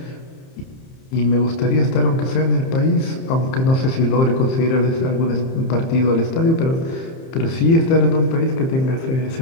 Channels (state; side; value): late; right; 30 ms